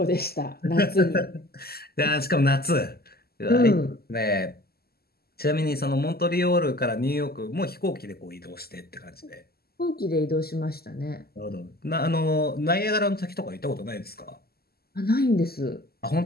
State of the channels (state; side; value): late; right; 0.45 ms